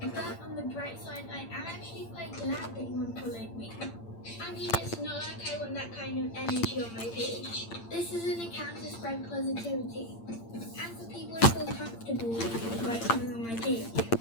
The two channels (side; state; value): right; late; 8.8 ms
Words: But on the bright side, I am actually quite glad that you unfollowed me. I mean, it's not like I want that kind of energy on my page. This is an account to spread positivity, and for people to feel comfortable about coming on my page.